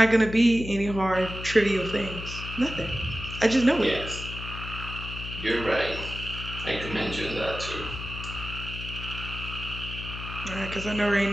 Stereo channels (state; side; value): noise; left; hum, 9 dB below the sound